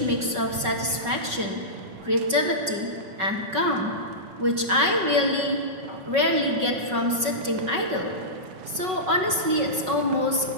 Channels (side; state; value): left; late; 5.4 ms